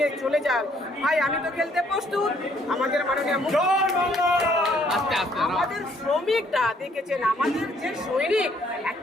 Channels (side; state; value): both; normal; correlation 0.65